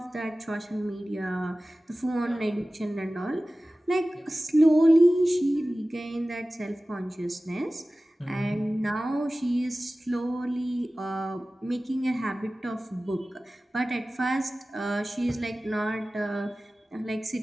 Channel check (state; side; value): normal; both; correlation 0.97